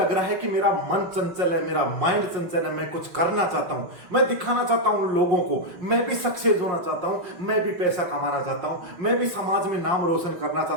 रहा है कि मेरा मन चंचल है, मेरा माइंड चंचल है, मैं कुछ करना चाहता हूं, मैं दिखाना चाहता हूं लोगों को, मैं भी सक्सेस होना चाहता हूं, मैं भी पैसा कमाना चाहता हूं, मैं भी समाज में नाम रोशन करना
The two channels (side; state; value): left; late; 5.6 ms